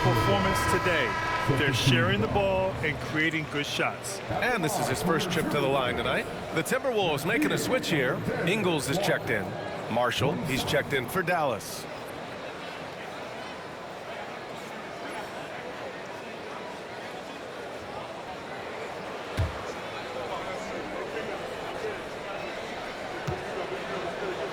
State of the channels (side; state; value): both; identical; correlation 1.00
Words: performance today. They're sharing the ball and creating good shots. And this is his first trip to the line tonight. The Timberwolves making a switch here. Ingles is checked in. Marshall, he's checked in for Dallas.